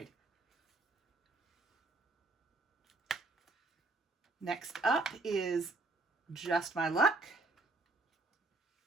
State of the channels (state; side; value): quieter; left; 3.2 dB